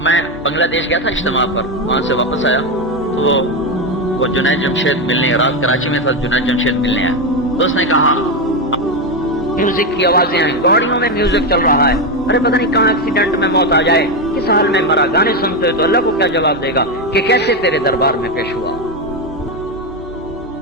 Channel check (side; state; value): both; normal; correlation 0.10